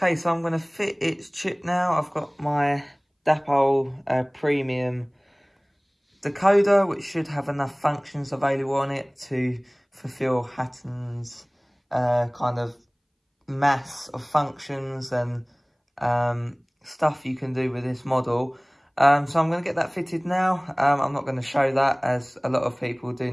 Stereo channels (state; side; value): identical; both; correlation 1.00